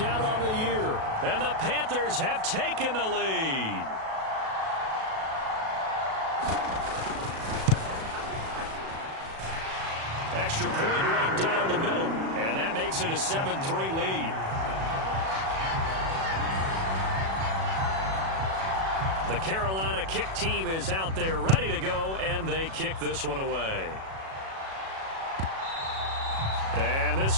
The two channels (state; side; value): late; left; 37 ms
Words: on the year. And the Panthers have taken the lead. Extra point right down the middle. And that makes it a 7-3 lead. The Carolina kick team is out there ready to go, and they kick this one away. And